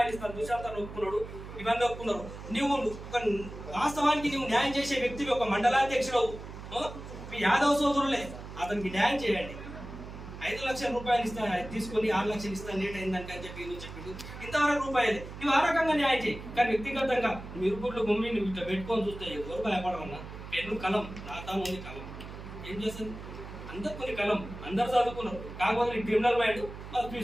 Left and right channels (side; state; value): right; noise; hum, 12 dB below the sound